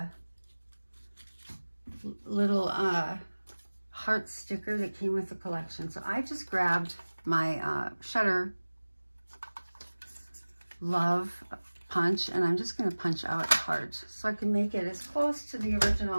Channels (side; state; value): both; inverted; correlation -1.00